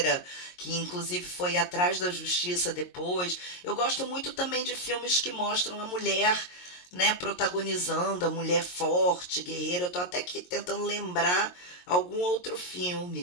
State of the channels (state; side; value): late; right; 22 ms